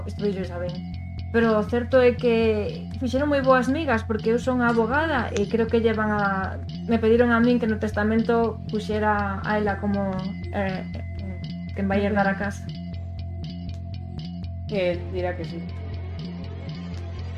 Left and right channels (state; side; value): identical; both; correlation 1.00